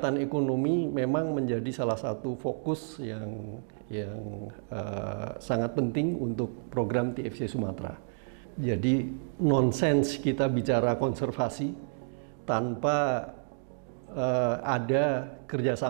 ekonomi memang menjadi salah satu fokus yang sangat penting untuk program TFC Sumatera. Jadi nonsens kita bicara konservasi tanpa ada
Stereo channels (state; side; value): silent; left; digital silence